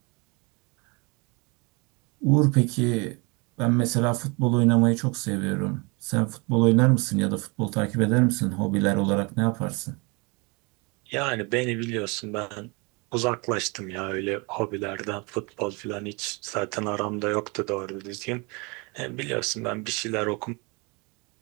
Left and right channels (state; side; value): quieter; left; 29.3 dB